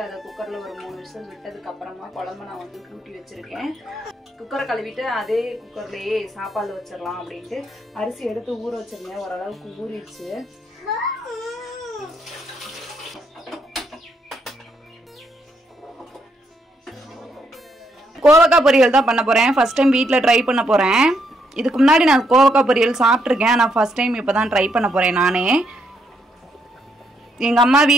அதை குக்கர்ல ஒரு 3 விசில் விட்டதுக்கு அப்புறமா குழம்பு நான் வந்து கூட்டி வச்சிருக்கேன். குக்கரை கழுவிட்டு அதே குக்கர்லயே சாப்பாடு வச்சிடலாம் அப்படின்ட்டு அரிசி எடுத்து ஊற வச்சிருந்தேன். ஓரளவுக்கு ஊறிடுச்சு. கோவக்காய் பொரியல் தான் பண்ண போறேன். ஃபர்ஸ்ட் டைம் வீட்ல ட்ரை பண்ண போறேன். இதுக்கு முன்னாடி நான் கோவக்காய் பொரியல் சாப்பிட்ருக்கேன். நான் ஃபர்ஸ்ட் டைம் இப்போ தான் ட்ரை பண்ண போறேன் நானே. எங்கள் அம்மா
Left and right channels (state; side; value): normal; both; correlation 0.75